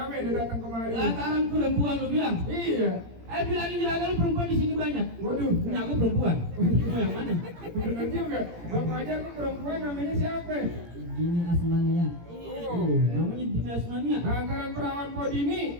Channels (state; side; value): late; left; 17 ms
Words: udah datang kemari. Lantaran perempuan lu bilang. Iya. Bilangin juragan lu perempuan di sini banyak. Waduh, Ini aku perempuan. Mau yang mana? benar juga. Bang Fajar tuh perempuan namanya siapa? Dini Asmania. Namanya Dini Asmania. Lantaran perawan Podini.